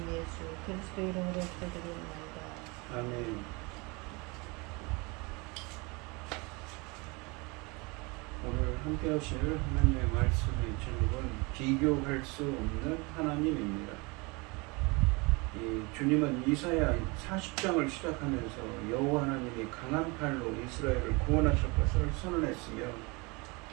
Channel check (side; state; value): left; quieter; 27.4 dB